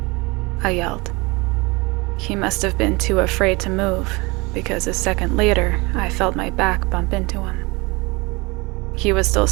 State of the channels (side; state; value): left; quieter; 25.5 dB